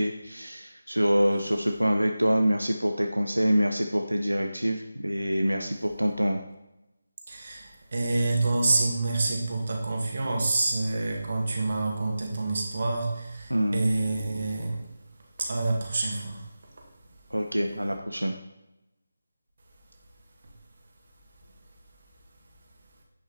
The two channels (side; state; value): both; inverted; correlation -0.95